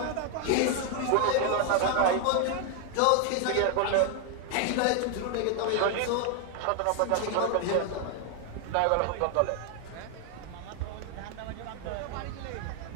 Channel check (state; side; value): different; both; correlation 0.00